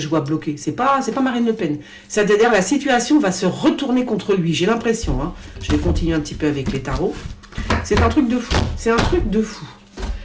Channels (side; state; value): both; identical; correlation 1.00